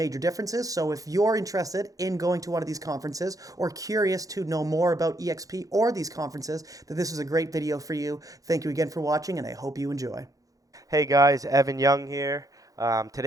differences. So if you're interested in going to one of these conferences or curious to know more about eXp or these conferences, then this is a great video for you. Thank you again for watching, and I hope you enjoy. Hey guys, Evan Young here.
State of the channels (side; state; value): left; late; 0.17 ms